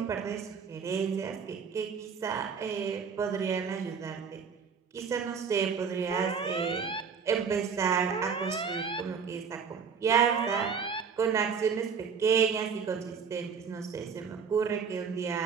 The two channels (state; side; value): quieter; left; 6.2 dB